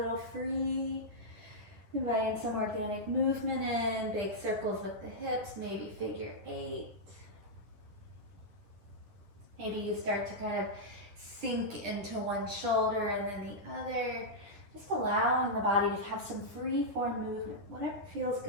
free. Inviting some organic movement in. Big circles with the hips, maybe figure 8. Maybe you start to kind of sink into one shoulder and then the other. Just allowing the body to have some free form movement, whatever feels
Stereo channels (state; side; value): late; left; 10 ms